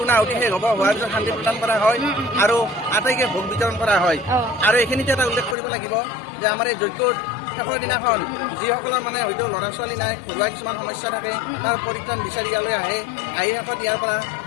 শেষ হ'ব হোৱাৰ পিছত শান্তি প্ৰদান কৰা হয় আৰু আটাইকে ভোগ বিতৰণ কৰা হয় আৰু এইখিনিতে এটা উল্লেখ কৰিব লাগিব যে আমাৰ এই যজ্ঞৰ শেষৰ দিনাখন যিসকলৰ মানে হয়তো ল'ৰা ছোৱালী নাই ঘৰুৱা কিছুমান সমস্যা থাকে তাৰ পৰিত্ৰাণ বিচাৰি ইয়ালৈ আহি শেষত ইয়াৰ পৰা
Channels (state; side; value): drops out; right; at 5.6 s